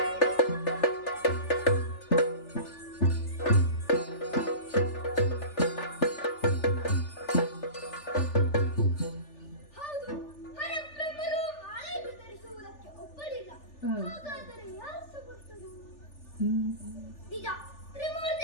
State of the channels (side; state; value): right; late; 3.4 ms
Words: ಹೌದು, ಹರಬ್ರಹ್ಮರು ಮಾಲೆಯನ್ನು ಧರಿಸುವುದಕ್ಕೆ ಒಪ್ಪಲಿಲ್ಲ. ಹಾಗಾದರೆ ಯಾರು ಸಮರ್ಥರು? ನಿಜ,